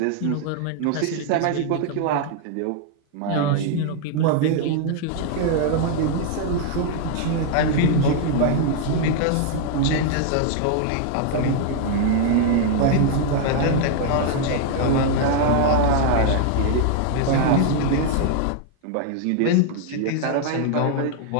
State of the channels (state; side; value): different; both; correlation 0.00